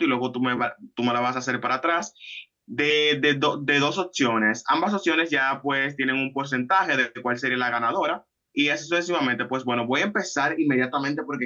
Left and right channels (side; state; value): both; identical; correlation 1.00